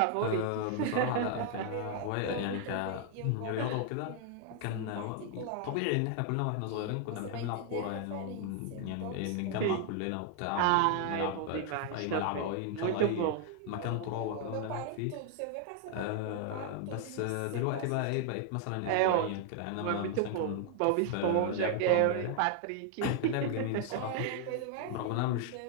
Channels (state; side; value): different; both; correlation 0.00